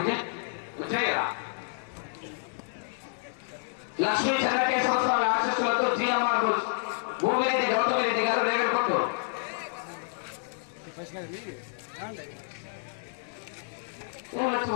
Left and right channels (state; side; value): silent; right; 58 dB below the other